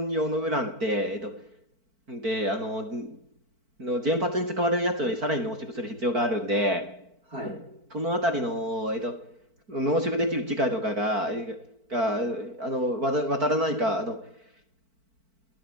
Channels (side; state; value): left; late; 4.5 ms